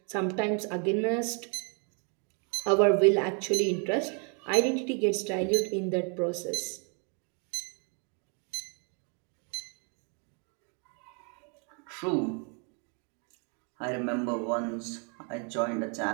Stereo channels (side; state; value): left; quieter; 37.7 dB